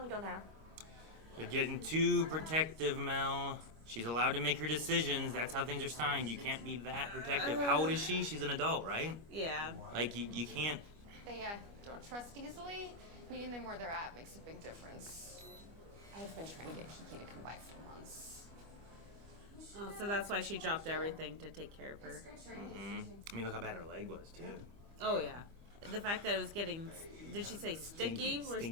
to go now. You're getting too protective, Mel. She's allowed to make her decisions. That's how things are signed. You can't be that protective. How old is she? She's an adult, right? Yeah. Like, you can't... They don't trust easily. Meeting them where they're at makes a big difference. I've been trying to get Kiki to come by for months. Oh, so that's why she dropped everything to take care of her. Mm-hmm. I mean, look how bad her leg was, too. Oh, yeah. The fact that it was getting, did she say sticky or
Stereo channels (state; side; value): late; left; 25 ms